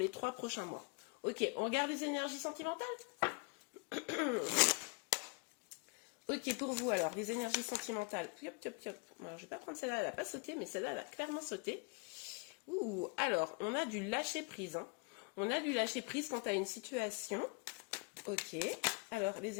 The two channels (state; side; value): quieter; right; 32.3 dB